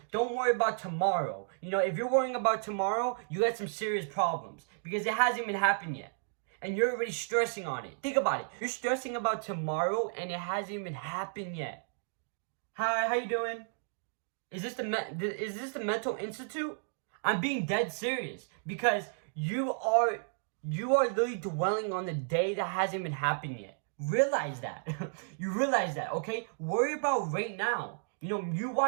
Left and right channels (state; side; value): silent; left; digital silence